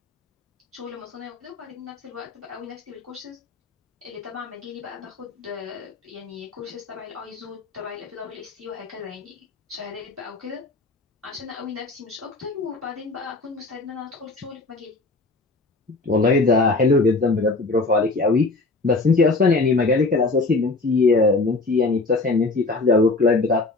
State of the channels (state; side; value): quieter; right; 3.5 dB